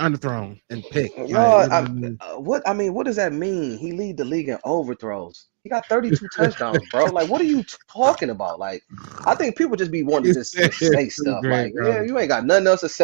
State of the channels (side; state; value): left; silent; digital silence